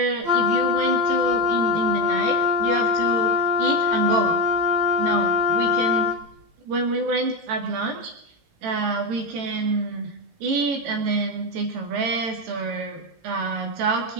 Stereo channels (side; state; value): left; late; 18 ms